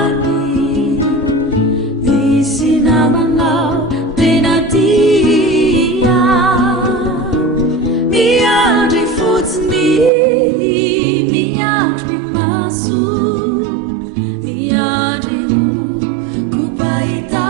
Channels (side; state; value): left; drops out; at 10.1 s